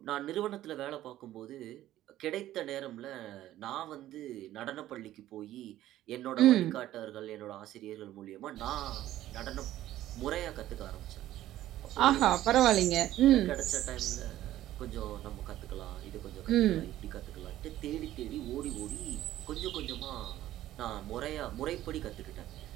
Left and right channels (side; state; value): left; quieter; 13.8 dB